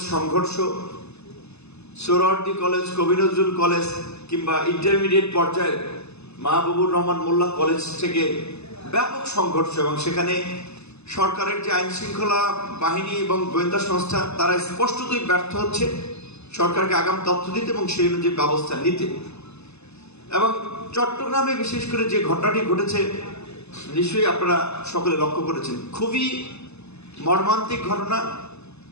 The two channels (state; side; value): late; right; 0.80 ms